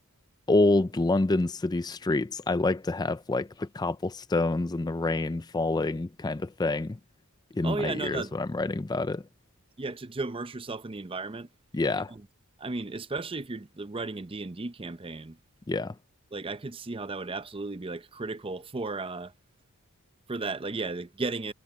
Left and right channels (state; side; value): normal; both; correlation 0.67